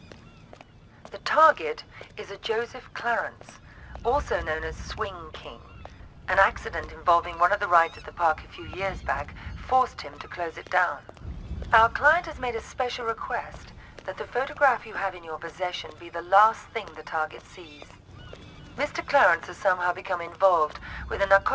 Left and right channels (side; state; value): both; identical; correlation 1.00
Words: The target is a Joseph Clarence, also known as Swing King. An accident involving one of the rides at the park a few years back forced him to close it down. Our client has made a special request that the photograph you have in your possession be the last thing the target sees. Mr. Clarence has somehow become involved with a